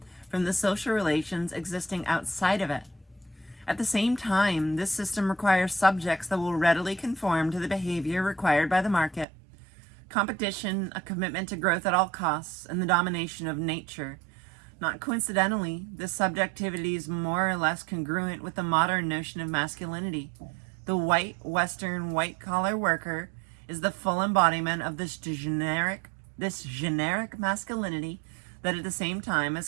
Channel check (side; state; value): left; drops out; at 9.2 s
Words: from the social relations existing outside of it. At the same time, this system requires subjects that will readily conform to the behavior required by the market. Competition, a commitment to growth at all costs, and the domination of nature. Not coincidentally, this subjectivity is more or less congruent with the modern notion of masculinity. The white, Western, white-collar worker is the full embodiment of this generic masculinity that at the same time